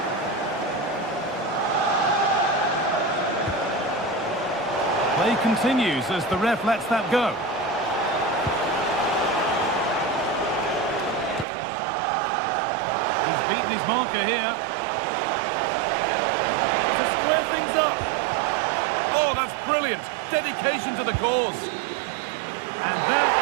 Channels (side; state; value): left; drops out; at 11.5 s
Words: Play continues as the ref lets that go. He's beaten his marker here. To square things up. Oh, that's brilliant. Dedication to the cause. And that